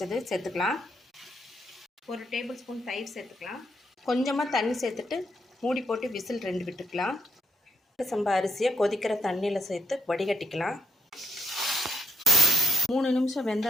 சேர்த்துக்கலாம். 1 டேபிள் ஸ்பூன் தயிர் சேர்த்துக்கலாம். கொஞ்சமாக தண்ணி சேர்த்துட்டு மூடி போட்டு விசில் 2 விட்டுக்கலாம். சம்பா அரிசியை கொதிக்கிற தண்ணியில் சேர்த்து வடிகட்டிக்கலாம். 3 நிமிஷம்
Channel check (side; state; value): both; normal; correlation 0.79